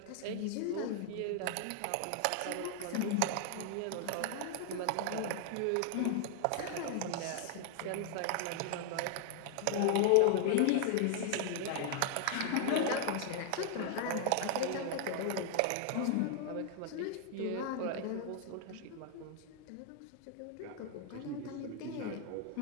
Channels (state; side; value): different; both; correlation 0.00